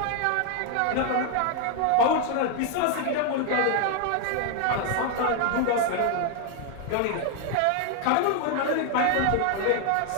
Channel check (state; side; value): different; both; correlation 0.01